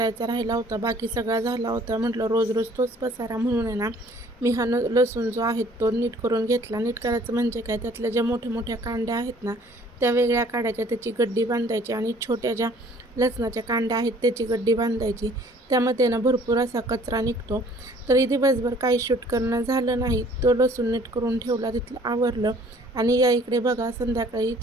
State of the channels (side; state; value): both; normal; correlation 0.56